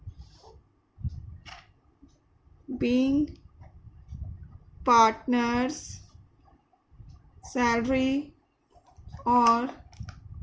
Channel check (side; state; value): both; identical; correlation 1.00